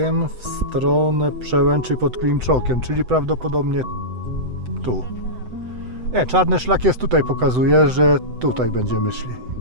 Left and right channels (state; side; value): late; left; 7.9 ms